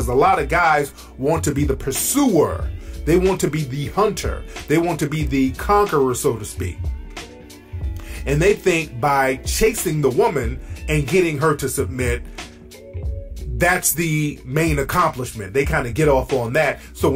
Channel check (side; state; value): both; identical; correlation 1.00